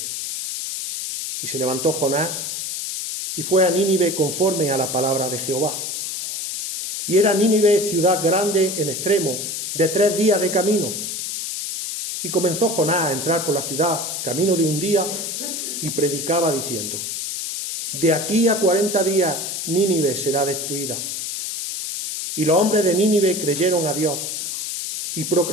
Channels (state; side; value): noise; left; hiss, 4 dB below the sound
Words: Y se levantó Jonás y fue a Nínive conforme a la palabra de Jehová. Y era Nínive ciudad grande en extremo, de 3 días de camino. Y comenzó Jonás a entrar por la ciudad, camino de un día, y predicaba diciendo: de aquí a 40 días Nínive será destruida. Y los hombres de Nínive creyeron a Dios y